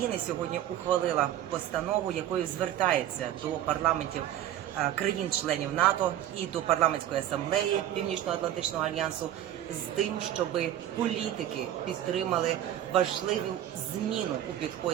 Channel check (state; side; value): quieter; left; 12.0 dB